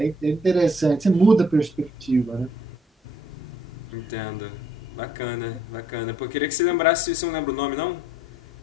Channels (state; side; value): normal; both; correlation 0.64